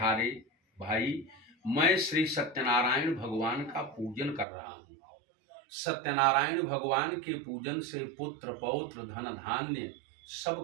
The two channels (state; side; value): drops out; left; at 4.5 s